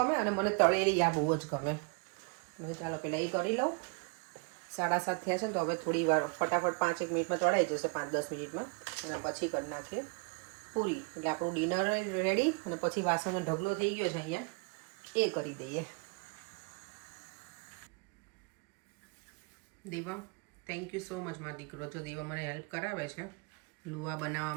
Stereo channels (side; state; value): left; quieter; 33.5 dB